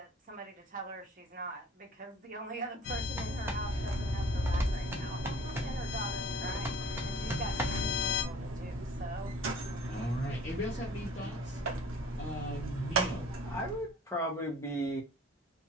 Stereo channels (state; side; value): normal; both; correlation 0.50